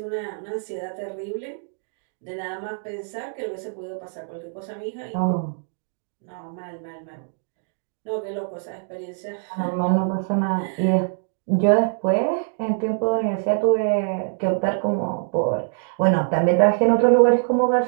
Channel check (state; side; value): silent; left; digital silence